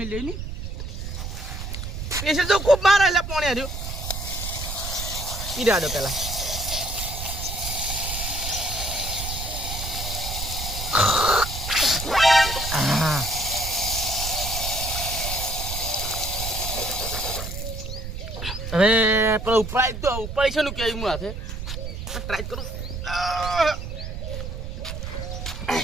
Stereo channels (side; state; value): right; noise; rumble, 6 dB below the sound